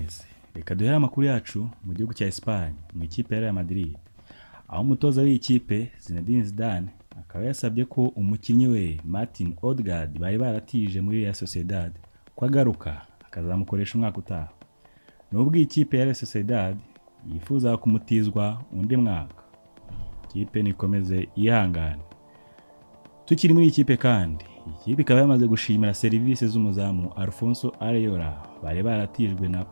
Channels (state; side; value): inverted; both; correlation -1.00